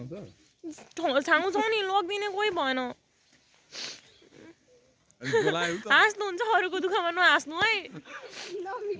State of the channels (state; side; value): identical; both; correlation 1.00